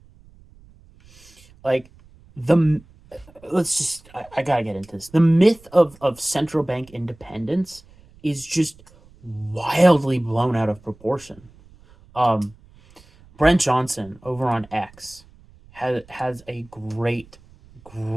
Like, let's just, I gotta get into this. The myth of central bank independence is just wildly blown out of proportion. Brent Johnson over on X has a great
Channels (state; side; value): noise; right; rumble, 26 dB below the sound